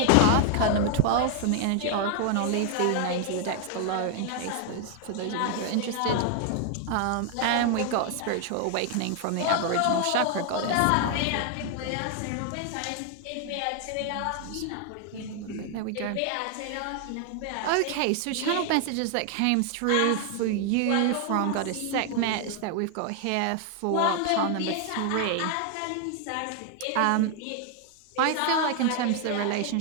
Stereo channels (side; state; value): both; different; correlation 0.00